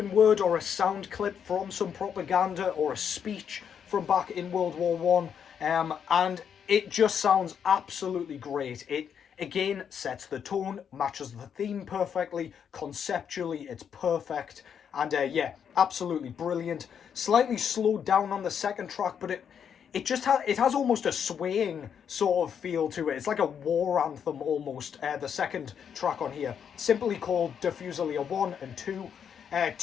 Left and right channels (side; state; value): right; quieter; 7.8 dB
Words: word or a sound clip from some propaganda or a speech from back in World War One, and it just sounds absolutely great. It again sets the tone, matches the theme perfectly, conceptually it's perfect, and yeah, absolutely brilliant. Slightly slowed down on the second track, but it just has almost a swaying sort of feel to it. It's like a war anthem almost. The second track on here, simply called Diffuser 1 and 2.